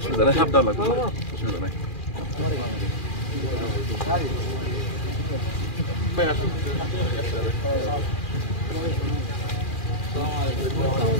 নেই সাবধান লাগবে অসুবিধা নেই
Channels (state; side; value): late; right; 2.4 ms